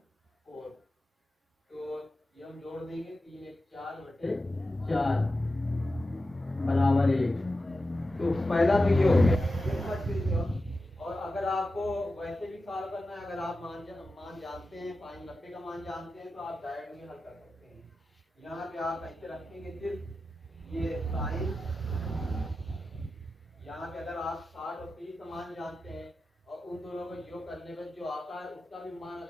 तो ये हम जोड़ देंगे, 3 1 4/4 बराबर 1। तो पहला तो ये हो गया। और अगर आपको वैसे भी सॉल्व करना है, अगर आप मान जानते हैं, साइन 90 का मान जानते हैं, तो आप डायरेक्ट भी हल कर सकते हैं। यहाँ पे आप ऐसे रखेंगे सिर्फ ये साइन, यहाँ पे अगर आप 60 और 30 का मान जानते हैं और उन दोनों को योग करने पर जो आता है उसका भी मान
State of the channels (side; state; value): both; normal; correlation 0.92